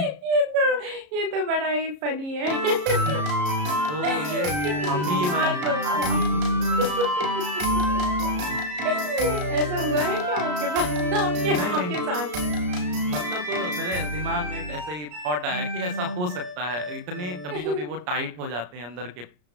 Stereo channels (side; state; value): left; late; 33 ms